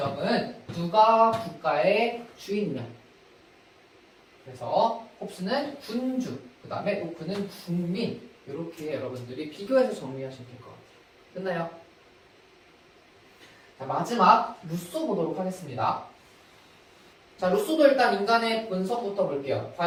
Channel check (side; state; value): both; identical; correlation 1.00